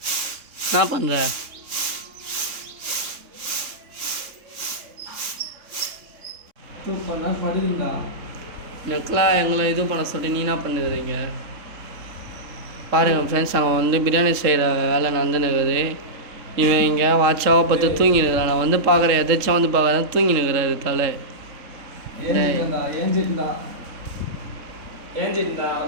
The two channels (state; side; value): late; left; 3.7 ms